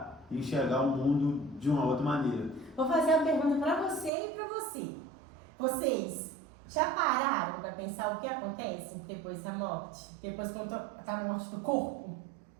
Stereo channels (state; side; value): drops out; left; at 4.1 s